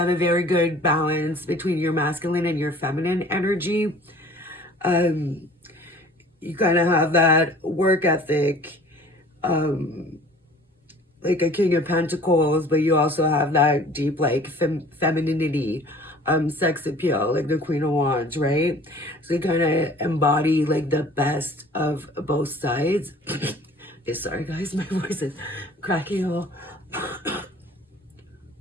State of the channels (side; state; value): both; normal; correlation 0.49